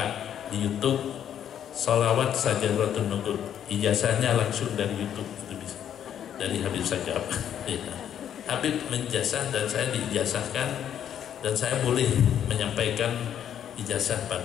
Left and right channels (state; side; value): quieter; right; 9.7 dB